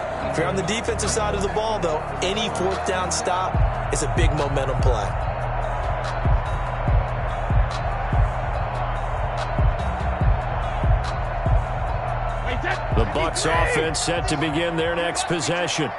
If you're on the defensive side of the ball, though, any 4th down stop is a big momentum play. The Bucs offense set to begin their next possession.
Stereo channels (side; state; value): both; identical; correlation 1.00